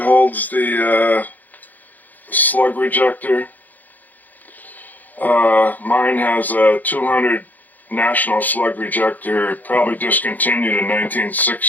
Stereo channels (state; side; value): late; right; 0.083 ms